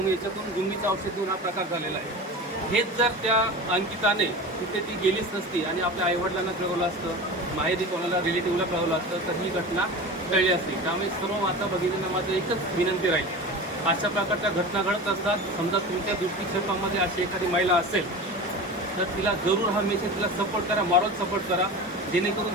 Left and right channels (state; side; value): normal; both; correlation 0.31